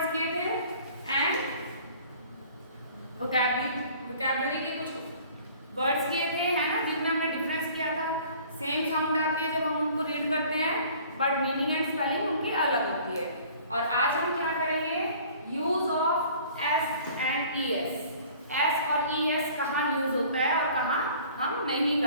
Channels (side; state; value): both; inverted; correlation -0.50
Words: किए थे एंड वोकैबुलरी के कुछ वर्ड्स किए थे, है ना, जिनमें हमने डिफरेंस किया था। सेम साउंड आती है जब हम उनको रीड करते हैं, बट मीनिंग एंड स्पेलिंग उनकी अलग होती है। और आज हम क्या करेंगे? Use of S and E S. S और ई एस कहाँ यूज होता है और कहाँ हम नहीं